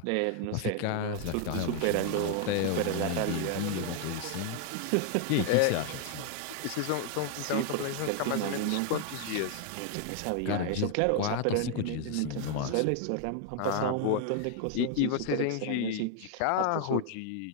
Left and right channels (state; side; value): different; both; correlation 0.00